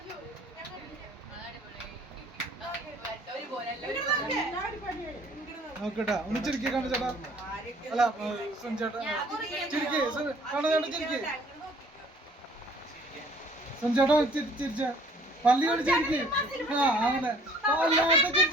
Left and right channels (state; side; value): normal; both; correlation 0.55